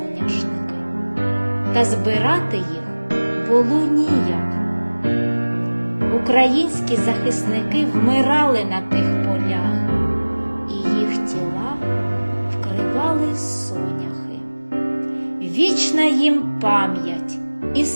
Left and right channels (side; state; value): both; inverted; correlation -1.00